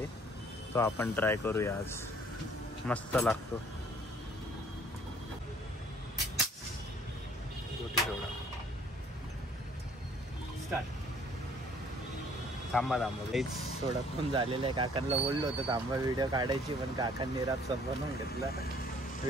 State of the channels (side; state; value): both; normal; correlation 0.58